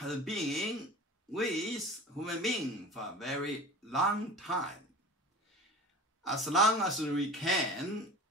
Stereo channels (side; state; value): both; normal; correlation 0.37